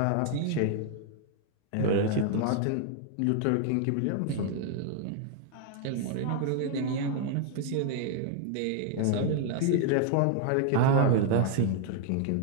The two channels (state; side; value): different; both; correlation 0.00